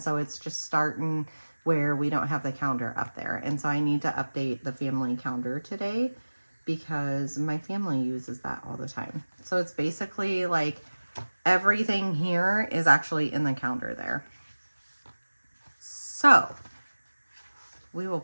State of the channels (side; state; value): both; inverted; correlation -1.00